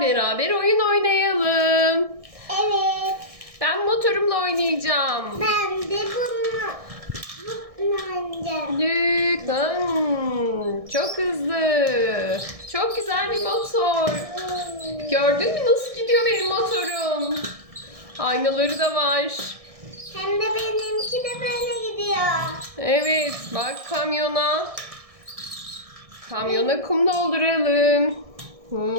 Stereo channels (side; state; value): left; late; 1.6 ms